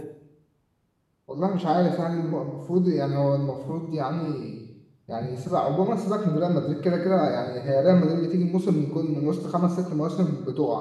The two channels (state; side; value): identical; both; correlation 1.00